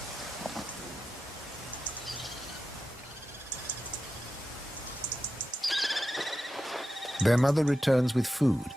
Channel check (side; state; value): both; normal; correlation 0.91